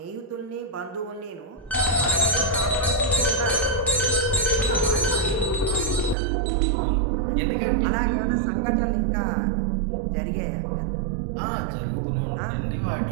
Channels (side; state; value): left; drops out; at 6.2 s